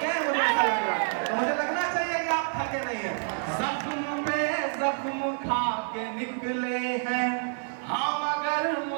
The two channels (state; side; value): silent; left; 56 dB below the other